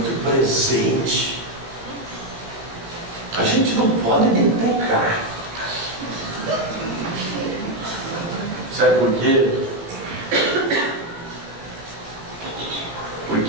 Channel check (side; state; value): left; late; 18 ms